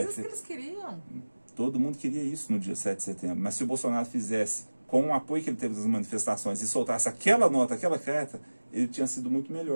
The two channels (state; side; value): inverted; both; correlation -1.00